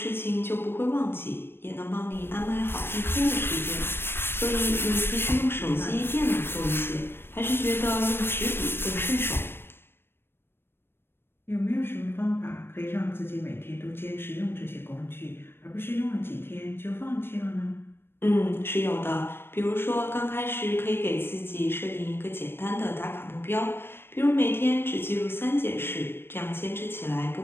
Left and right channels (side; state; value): right; late; 0.11 ms